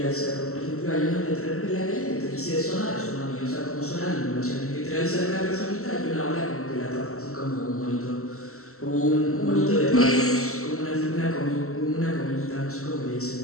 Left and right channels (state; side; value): late; right; 0.63 ms